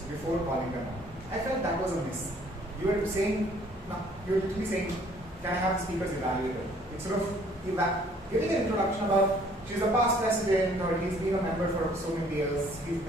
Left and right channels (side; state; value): both; normal; correlation 0.59